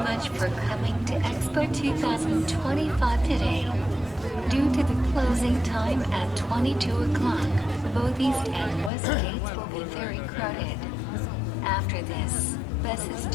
for coming to Expo 2025 today.Due to the closing time at 22 o'clock, both east and west gates will be very crowded. After this, buses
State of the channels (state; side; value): drops out; right; at 8.9 s